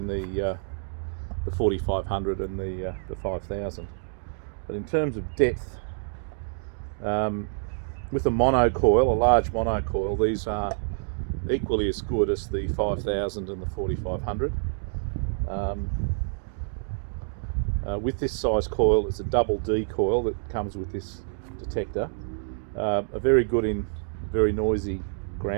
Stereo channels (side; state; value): left; silent; digital silence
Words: the 4500 and the 5000. But in terms of depth, with a monocoil, a large monocoil, these are equally as good as the 5000 and the 4500. With this size coil, it's a double D coil that comes with this detector. A very good in very noisy